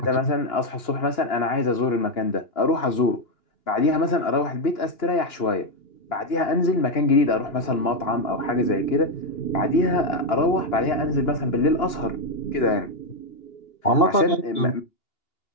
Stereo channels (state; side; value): late; right; 2.9 ms